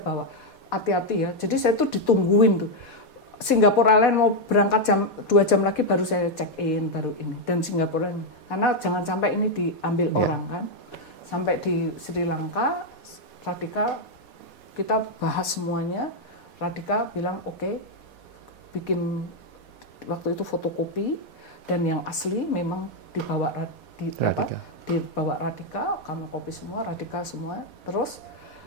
bawa, hati-hati ya. Jadi saya tuh ditungguin tuh. Singapore Airlines mau berangkat 2 jam lagi baru saya check in, baru ini. Dan Singapore Airlines, karena jangan sampai ini diambil orang kan. Sampai di Sri Lanka, Radhika, kita bahas semuanya. Radhika bilang oke, bikin waktu itu fotokopi, dan yang asli memang dibawa dibawa Radhika, kami kopi semua, Radhika semua. Terus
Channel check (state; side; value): late; right; 4.2 ms